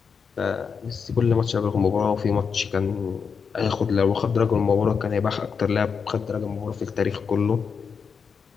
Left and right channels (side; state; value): right; quieter; 6.0 dB